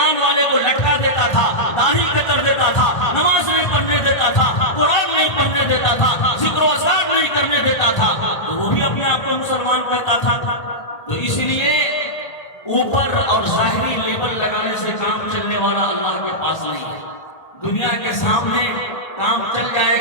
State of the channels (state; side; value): late; right; 1.8 ms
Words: والے کو لٹکا دیتا تھا، داڑھی کتر دیتا تھا، نماز نہیں پڑھنے دیتا تھا، قرآن نہیں پڑھنے دیتا تھا، ذکر و اذکار نہیں کرنے دیتا تھا. تو وہ بھی اپنے آپ کو مسلمان کہتا تھا. تو اس لیے اوپر اور ظاہری لیبل لگانے سے کام چلنے والا اللہ کے پاس نہیں ہے. دنیا کے سامنے کام چل جائے